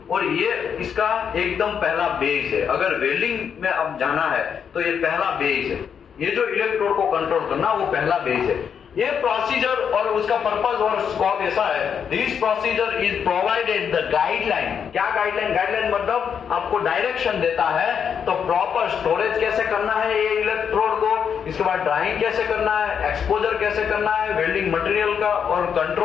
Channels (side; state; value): right; quieter; 7.4 dB